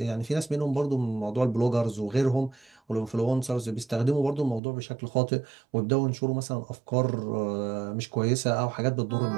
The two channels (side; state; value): left; drops out; at 4.6 s